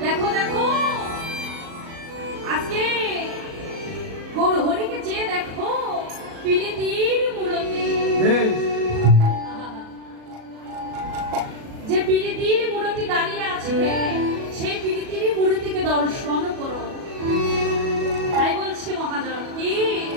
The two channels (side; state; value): left; late; 37 ms